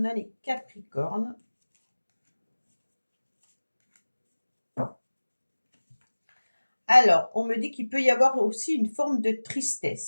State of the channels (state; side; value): inverted; both; correlation -1.00